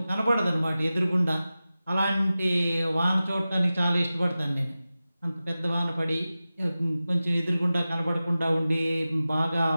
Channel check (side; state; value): both; inverted; correlation -0.95